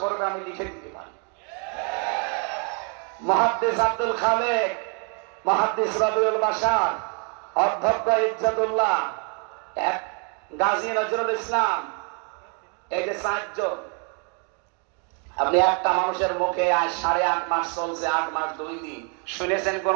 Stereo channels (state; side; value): quieter; left; 38.5 dB